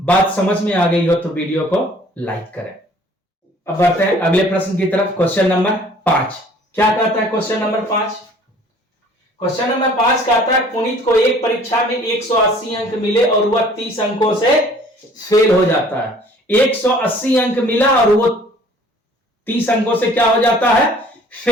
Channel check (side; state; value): both; normal; correlation 0.53